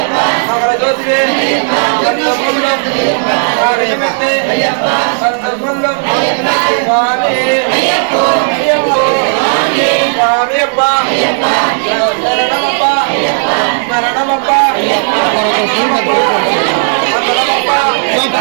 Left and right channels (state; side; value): silent; left; 64 dB below the other